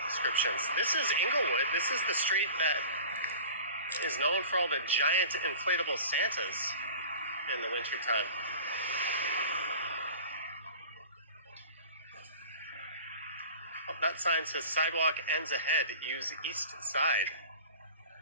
descriptions. This is Inglewood. This is the street that is known for all the giant inflatable Santas in the wintertime. Oh, that sign says sidewalk ends ahead. Use east side.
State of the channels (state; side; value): inverted; both; correlation -0.40